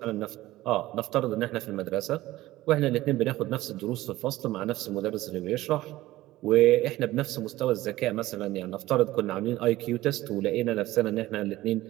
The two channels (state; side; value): quieter; left; 16.7 dB